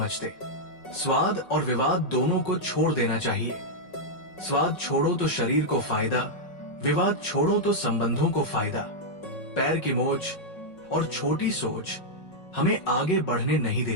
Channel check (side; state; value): right; late; 5.4 ms